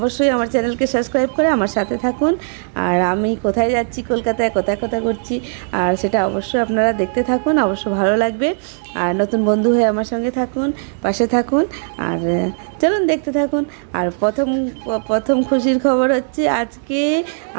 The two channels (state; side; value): silent; left; 65 dB below the other